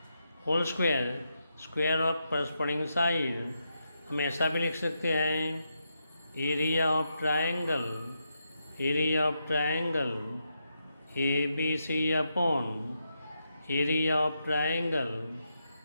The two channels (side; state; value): both; inverted; correlation -0.84